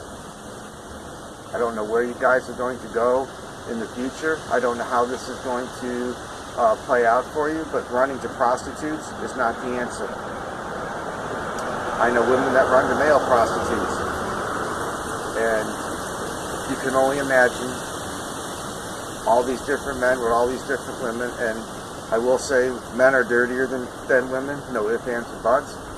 I don't know where you guys are going to go in the future. I don't know how this is going to play out for you, but running to prostitutes is not the answer. I know women that run to male prostitutes, and you can only imagine all these different men with all these different women. And I will say men are dirtier than women, no ifs, ands, or buts.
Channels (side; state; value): both; identical; correlation 1.00